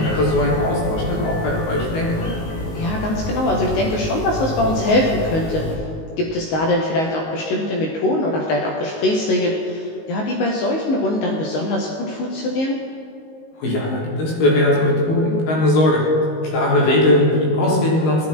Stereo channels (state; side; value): late; right; 19 ms